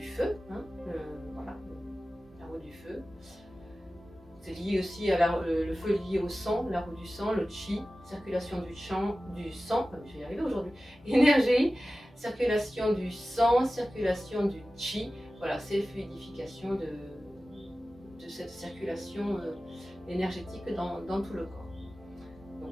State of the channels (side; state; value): both; normal; correlation 0.96